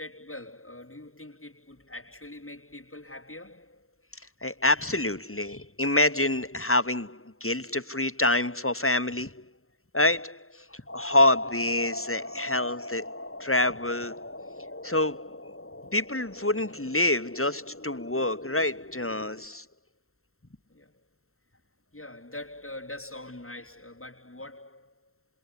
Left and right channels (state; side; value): late; right; 0.62 ms